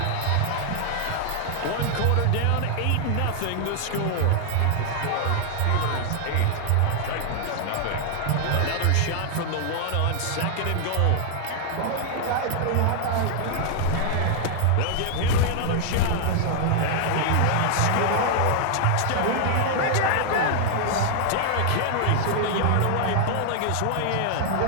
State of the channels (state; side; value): different; both; correlation 0.00